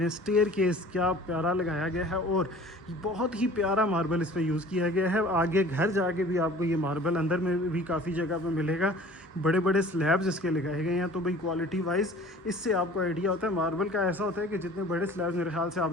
हैं। स्टेयर केस क्या प्यारा लगाया गया है और बहुत ही प्यारा मार्बल इस पर यूज़ किया गया है। आगे घर जाके भी आपको ये मार्बल अंदर में भी काफ़ी जगह पे मिलेगा। बड़े बड़े स्लैब्स इसके लगाए गए हैं, तो भाई क्वालिटी वाइज इससे आपको आइडिया होता है। मार्बल का ऐसा होता है कि जितने बड़े स्लैब्स मेरे ख्याल से आप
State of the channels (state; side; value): normal; both; correlation 0.46